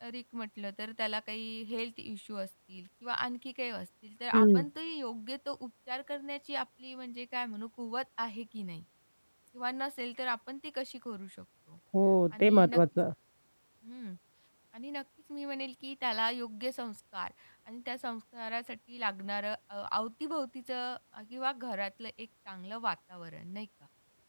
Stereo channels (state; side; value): inverted; both; correlation -1.00